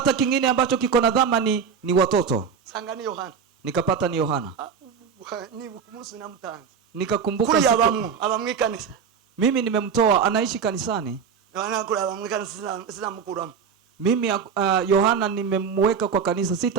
kingine ambacho kiko na dhamani, ni watoto. sanga ni Yohana, Nikapata ni Yohana. ni kumunsi namutanze, Nikakumbuka kuri siku, abamwikanisa, mimi nimemtoa, anaishi kanisani. Yohana kuri abamwikanisa sinamukuramo, Mimi Yohana nimemweka kwa kanisa,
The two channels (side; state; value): left; quieter; 6.6 dB